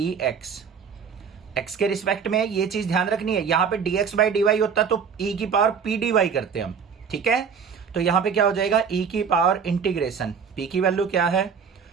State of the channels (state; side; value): quieter; left; 6.5 dB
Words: x के रिस्पेक्ट में ये चीज ध्यान रखनी है, यहाँ पे dx बाई dy होता तो e की पावर p dy करते हम, ठीक है। तो यहाँ पे क्या हो जाएगा e की पावर इंटीग्रेशन, p की वैल्यू क्या है